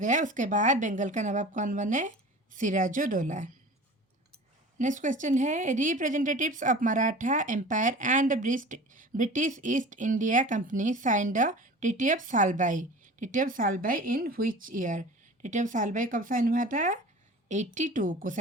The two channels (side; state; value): both; normal; correlation 0.39